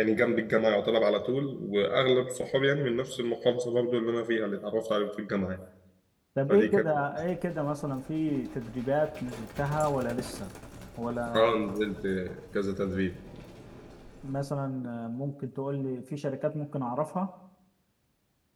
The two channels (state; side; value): identical; both; correlation 1.00